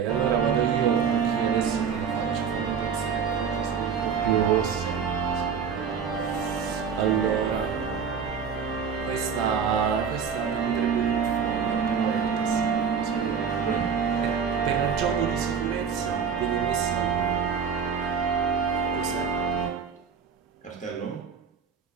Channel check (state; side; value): quieter; left; 6.6 dB